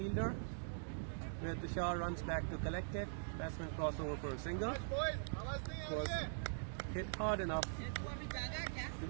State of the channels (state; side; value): silent; left; digital silence